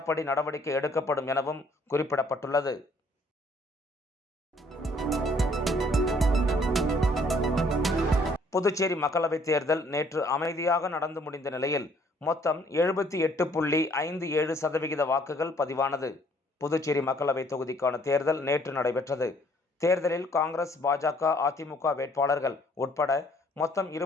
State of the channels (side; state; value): both; normal; correlation 0.62